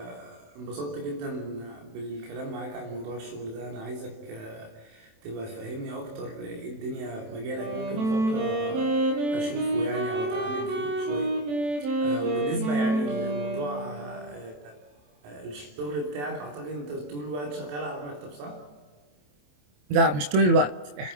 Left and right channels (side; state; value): left; late; 27 ms